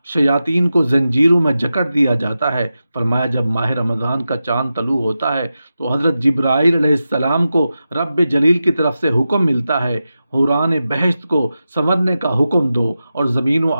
شیاطین کو زنجیروں میں جکڑ دیا جاتا ہے۔ فرمایا جب ماہ رمضان کا چاند طلوع ہوتا ہے تو حضرت جبرائیل علیہ السلام کو رب جلیل کی طرف سے حکم ملتا ہے، حوران بہشت کو سنورنے کا حکم دو اور زمین و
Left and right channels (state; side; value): inverted; both; correlation -0.92